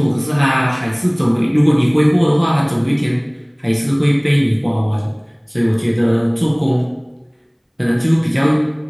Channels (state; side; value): identical; both; correlation 1.00